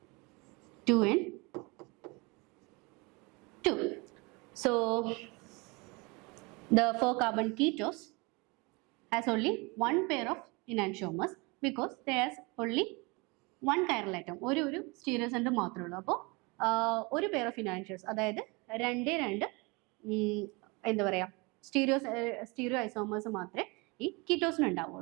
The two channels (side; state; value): left; quieter; 27.5 dB